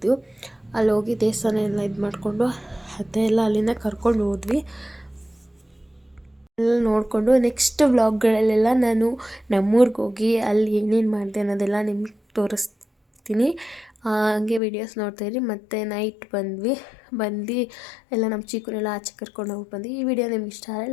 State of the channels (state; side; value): drops out; right; at 14.6 s